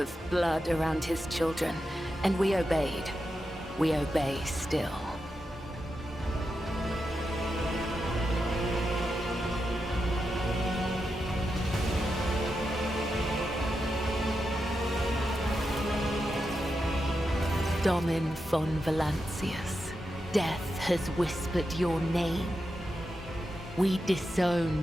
blood around his children, and we obeyed. We obey still. Domin von Valancius, death has whispered your name. We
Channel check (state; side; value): normal; both; correlation 0.88